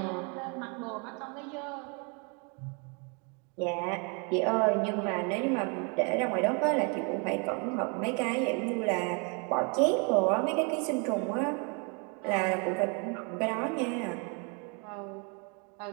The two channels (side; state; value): left; quieter; 34.5 dB